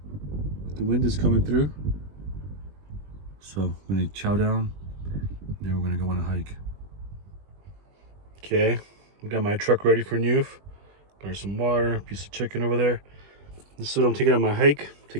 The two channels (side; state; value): left; late; 20 ms